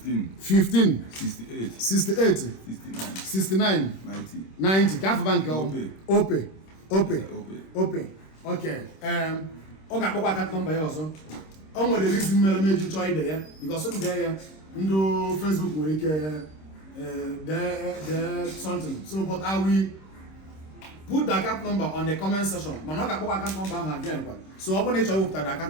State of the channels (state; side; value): late; right; 26 ms